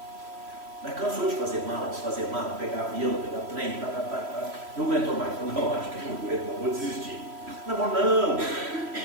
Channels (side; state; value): left; late; 3.1 ms